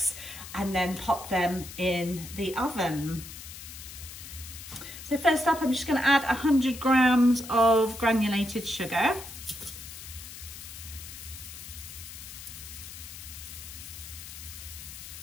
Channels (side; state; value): left; noise; hiss, 12 dB below the sound